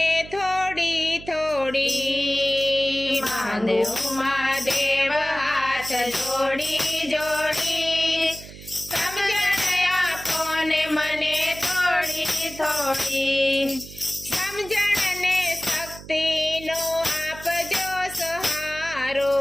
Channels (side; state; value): right; noise; hum, 16 dB below the sound